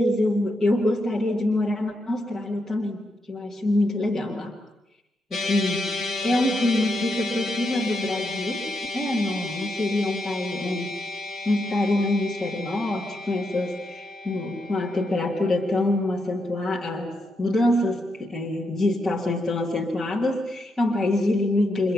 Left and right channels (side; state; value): both; normal; correlation 0.82